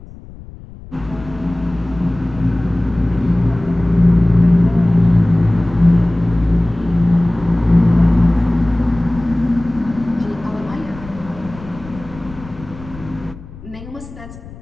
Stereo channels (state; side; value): noise; left; rumble, 17 dB below the sound